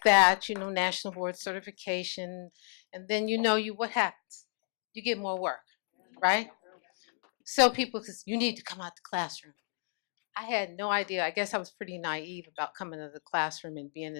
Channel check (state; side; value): silent; right; 56 dB below the other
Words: that, you know, national board certification. And then what happens? You get more work, right? So people say, you need to come out the classroom. I had no idea. I guess I was pretty naive about coming to the classroom and being